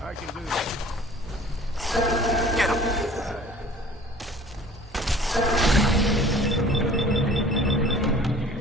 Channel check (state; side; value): normal; both; correlation 0.47